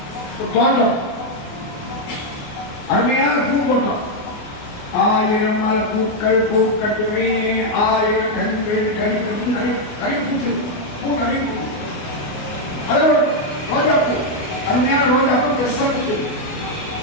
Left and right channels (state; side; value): late; right; 28 ms